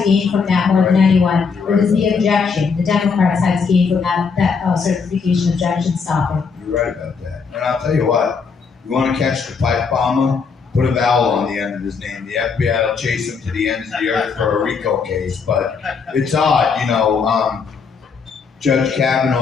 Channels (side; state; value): right; quieter; 5.5 dB